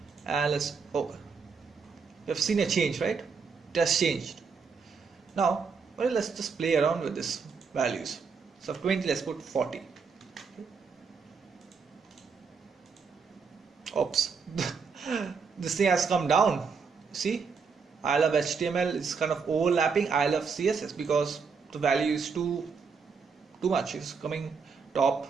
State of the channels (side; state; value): left; quieter; 5.4 dB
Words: And let's open. You've seen a change, right? It has changed. Now, well, let's just play around with this values. So of 20, let's put 40. Okay. Oops. This thing has come down. See, I love HTML is kind of overlapping I love CSS because the value is too much. It's coming top